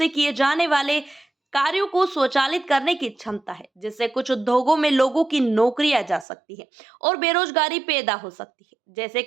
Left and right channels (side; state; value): left; drops out; at 6.2 s